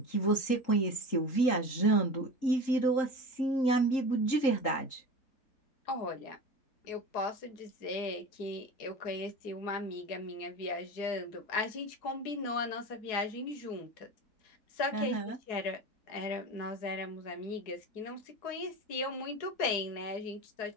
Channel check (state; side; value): late; right; 3.8 ms